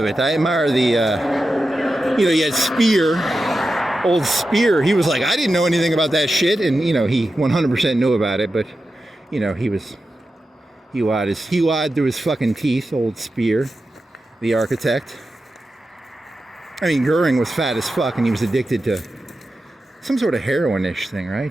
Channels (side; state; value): both; normal; correlation 0.91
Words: it. I admire the, he had Speer, old Speer. He was like, I didn't know anything about that shit. And, he 100% knew about it, but, he lied through his fucking teeth, old Speer, the architect. I mean, Goering was fat as fuck, and he was addicted to some sort of heroin-ish thing,